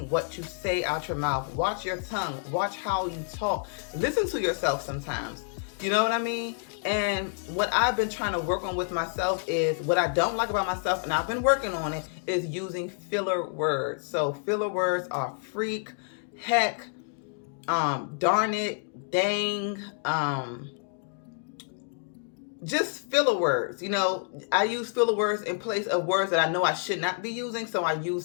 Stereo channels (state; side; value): silent; right; 59 dB below the other